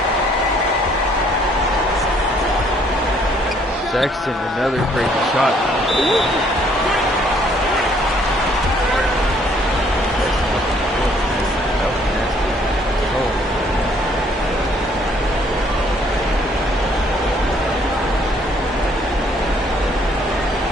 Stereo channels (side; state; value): both; normal; correlation 0.63